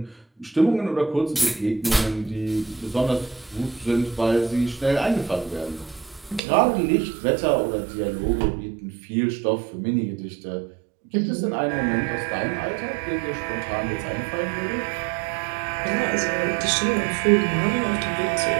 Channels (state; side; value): drops out; left; at 6.4 s